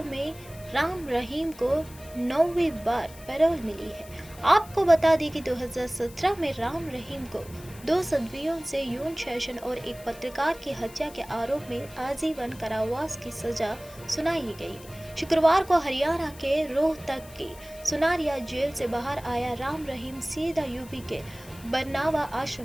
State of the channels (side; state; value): left; noise; hiss, 20 dB below the sound